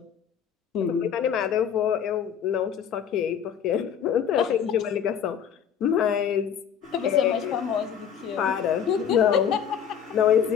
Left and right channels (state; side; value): quieter; right; 8.3 dB